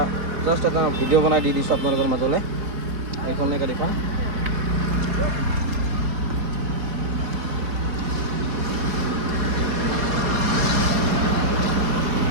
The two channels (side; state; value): left; late; 4.2 ms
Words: जस्ट एट भिडिओ बना दी दी अपने मजले एखने गाड़ी